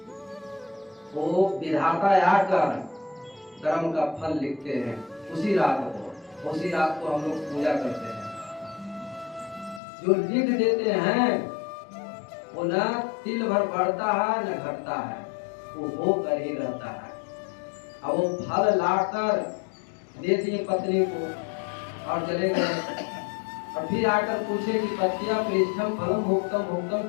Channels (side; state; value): right; drops out; at 9.8 s